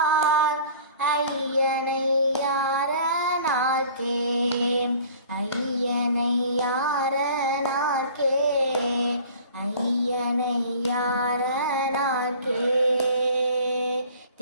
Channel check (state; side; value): inverted; both; correlation -0.47